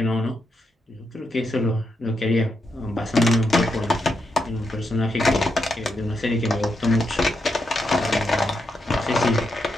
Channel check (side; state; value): both; normal; correlation 0.83